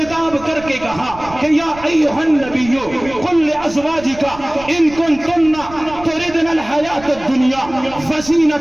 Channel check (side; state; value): right; noise; rumble, 17 dB below the sound